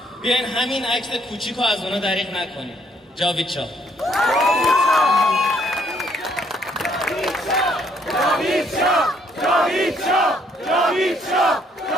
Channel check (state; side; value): normal; both; correlation 0.67